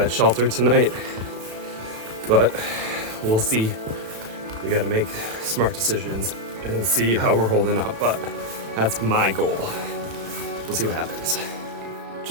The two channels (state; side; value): late; left; 34 ms